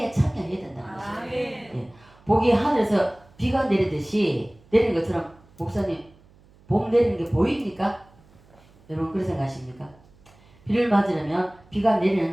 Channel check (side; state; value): right; noise; hum, 28 dB below the sound